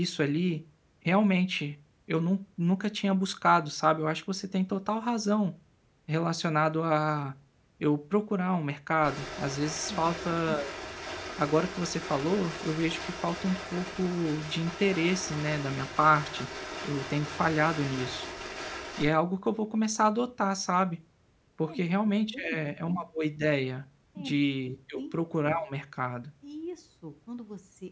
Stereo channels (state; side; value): identical; both; correlation 1.00